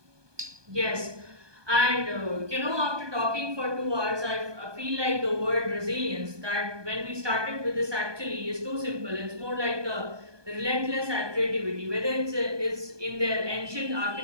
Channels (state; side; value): late; left; 1.2 ms